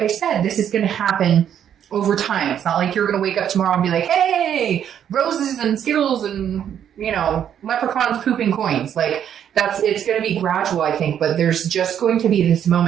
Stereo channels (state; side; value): quieter; left; 9.4 dB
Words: I said, this is going to happen over time. It's not like you're going to wake up tomorrow and be like, hey, roses and Skittles and, you know, leprechauns pooping coins. Like it's going to be gradual, I think, but there's just going to be this